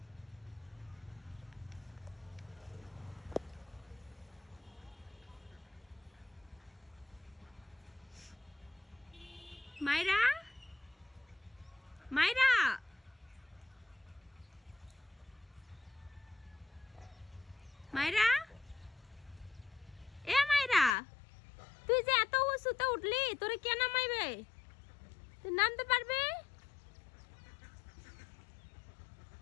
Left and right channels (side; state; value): right; drops out; at 20.9 s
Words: মাইরা, মাইরা, মাইরা, এ মাইরা তুই যে এত উঁচুতে উঠলি, তোরে কে নামাইবে? তুই নামতে পারবি?